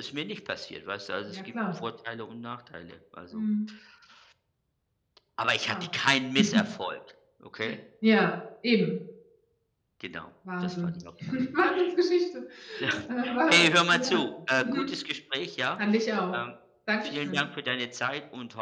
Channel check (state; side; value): identical; both; correlation 1.00